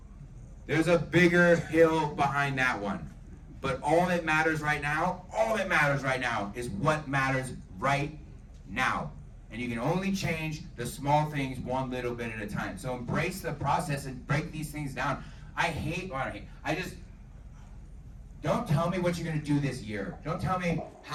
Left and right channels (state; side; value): identical; both; correlation 1.00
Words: there's a bigger hill behind that one. But all that matters right now is what matters right now. And you can only change the small things one little bit at a time. So embrace the process and break these things down. Don't tell me what you're going to do this year. Don't tell me